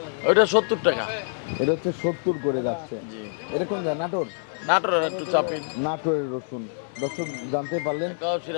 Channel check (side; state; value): right; silent; 56 dB below the other